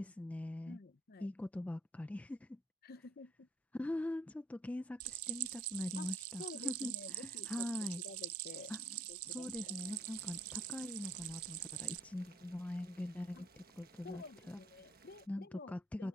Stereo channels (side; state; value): both; normal; correlation 0.64